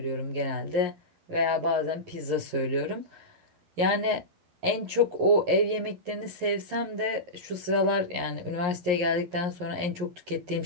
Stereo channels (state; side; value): late; left; 11 ms